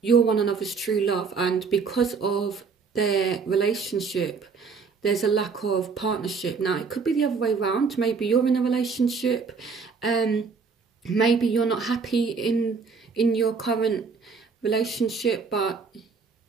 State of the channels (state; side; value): quieter; left; 5.1 dB